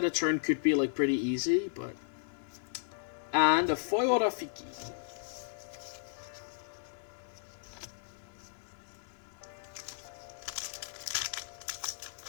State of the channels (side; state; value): right; silent; 55 dB below the other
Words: a turn could be, like, pretty easy, but... And a foil Rafiki.